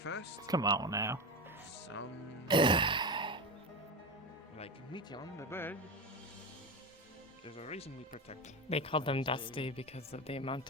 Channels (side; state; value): both; normal; correlation 0.21